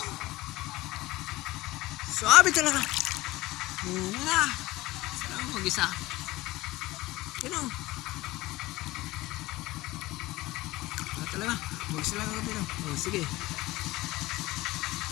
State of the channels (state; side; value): quieter; right; 19.1 dB